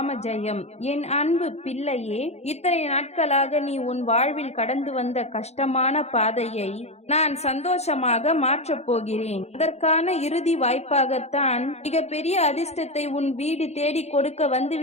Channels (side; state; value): right; late; 0.31 ms